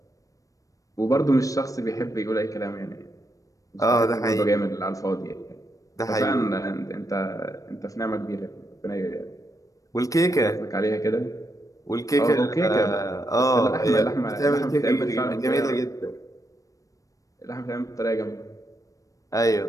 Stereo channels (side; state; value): right; late; 0.16 ms